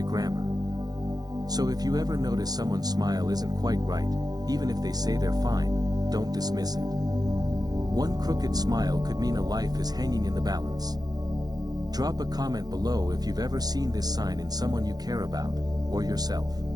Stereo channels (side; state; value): left; late; 0.19 ms